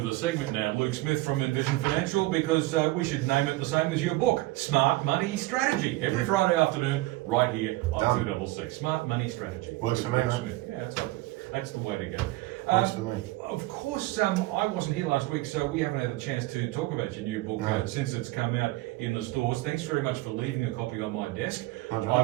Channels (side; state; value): left; quieter; 19.3 dB